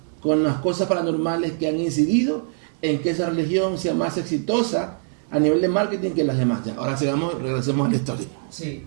con las cosas paranormales que han incidido en que esa religión sea más exitosa a nivel de marketing que las demás. Ya, ahora regresemos a la historia. Sí.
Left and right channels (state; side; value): silent; left; 63 dB below the other